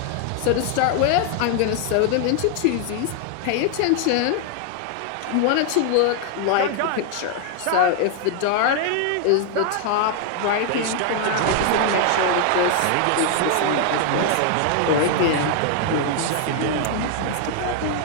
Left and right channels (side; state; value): both; different; correlation 0.00